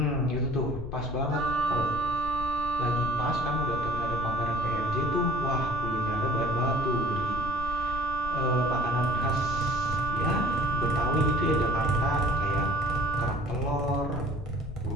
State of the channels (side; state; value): left; noise; rumble, 10 dB below the sound